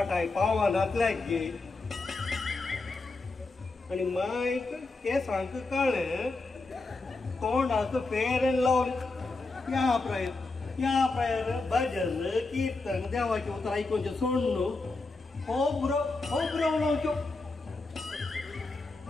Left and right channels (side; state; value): right; quieter; 3.5 dB